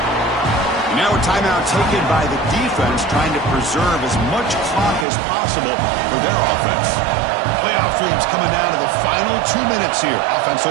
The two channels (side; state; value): left; drops out; at 5.1 s